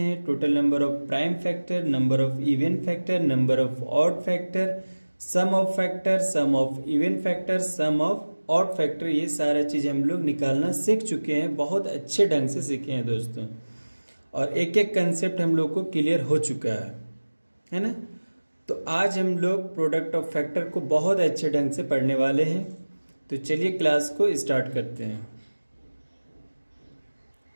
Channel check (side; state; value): both; inverted; correlation -1.00